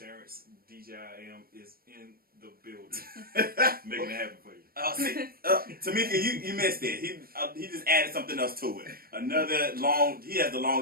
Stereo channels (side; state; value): left; late; 0.43 ms